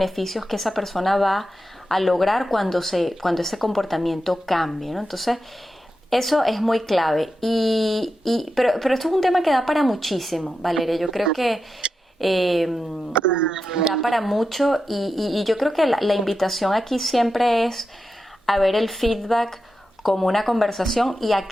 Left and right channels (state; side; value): normal; both; correlation 0.89